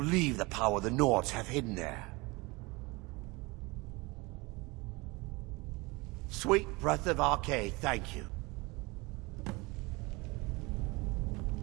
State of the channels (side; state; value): left; quieter; 24.7 dB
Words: the power the Nords have hidden there. Sweet breath of Arcade, thank you.